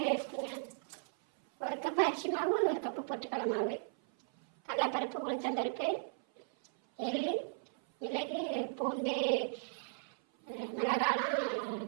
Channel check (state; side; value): silent; left; 54 dB below the other